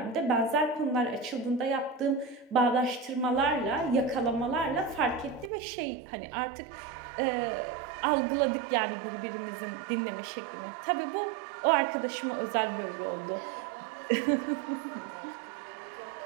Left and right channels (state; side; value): drops out; left; at 5.5 s